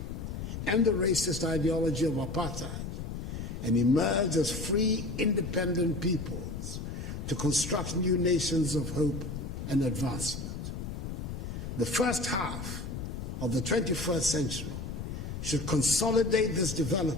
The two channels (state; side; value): noise; left; rumble, 6 dB below the sound